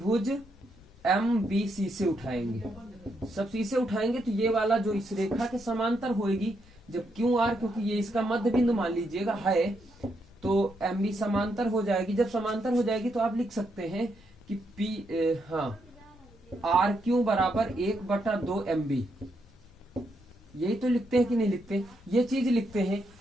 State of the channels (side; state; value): both; normal; correlation 0.79